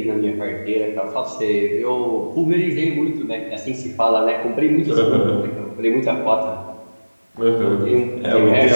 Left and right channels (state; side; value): inverted; both; correlation -1.00